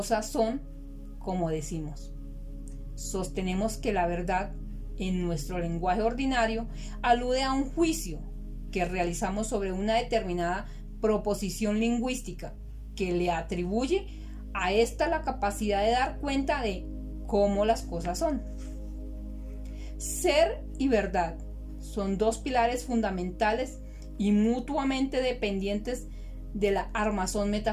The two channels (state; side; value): identical; both; correlation 1.00